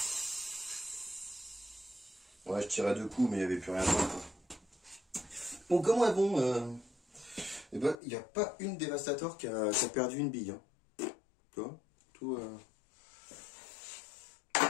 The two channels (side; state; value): right; drops out; at 8.0 s